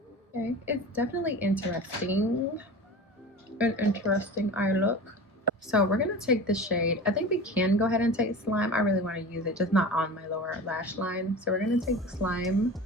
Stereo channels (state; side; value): normal; both; correlation 0.34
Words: Okay, it's definitely interesting. An interesting eye look. So we're gonna take the shade. I think we can go ahead and take slime. I really want to use it, just not on my lower lash line. So we're gonna take the slime,